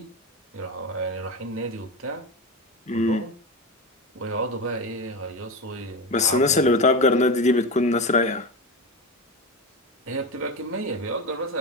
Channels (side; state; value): both; normal; correlation 0.21